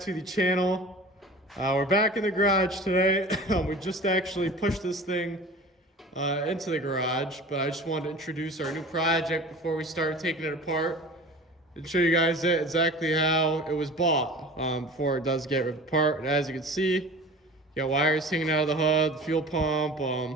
the channel. We're back in the garage today. We just actually pushed this thing into the garage, but I just wanted to introduce our new project before we start taking it apart and show you guys exactly how it was bought before it does get ripped apart. And as you can see, you got wires hanging out of the hood, the fuel pump.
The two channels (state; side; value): normal; both; correlation 0.39